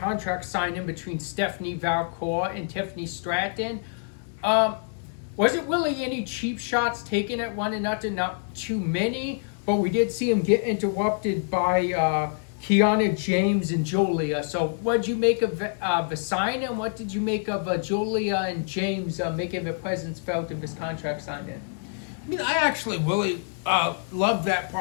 signing between Stephanie Valcour and Tiffany Stratton. Wasn't really any cheap shots taken at one another, not too many, but we did see him get interrupted by Kiana James and Julia. So what did you make of the sign, and what did you make of Julia and James making their presence felt in this contract signing? I mean, I actually really love that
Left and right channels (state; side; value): silent; right; 61 dB below the other